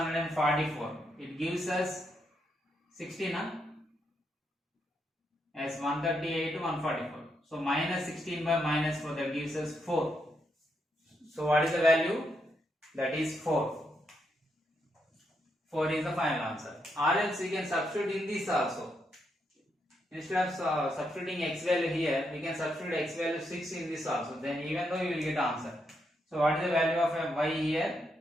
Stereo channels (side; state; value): both; normal; correlation 0.80